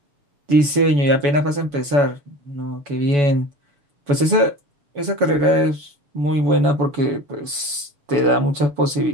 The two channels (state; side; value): late; left; 7.0 ms